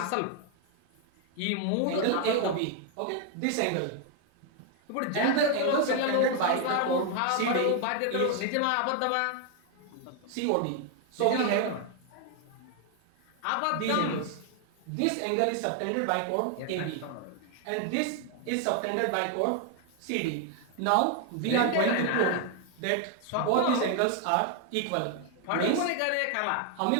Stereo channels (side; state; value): both; different; correlation 0.00